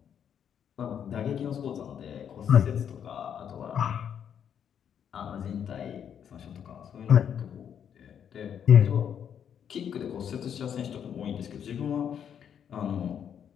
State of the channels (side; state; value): right; quieter; 8.5 dB